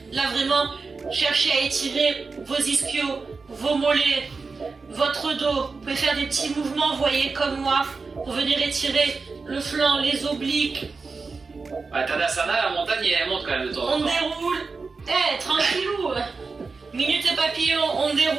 Là, vraiment, cherchez à étirer vos ischios, vos mollets, votre dos. Vous pouvez faire des petits mouvements, vous voyez, comme moi, pour venir étirer le flanc, les obliques. Bah, Tadasana, la montagne, elle monte quand même de temps en On temps. déroule. Tranquillou. Minute papillon, on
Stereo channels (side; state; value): left; quieter; 4.4 dB